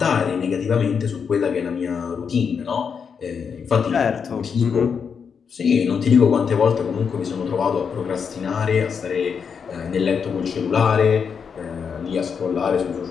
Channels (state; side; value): quieter; right; 6.4 dB